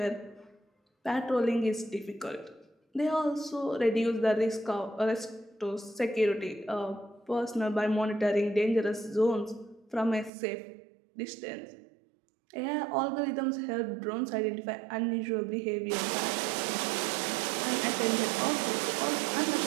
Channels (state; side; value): drops out; left; at 10.3 s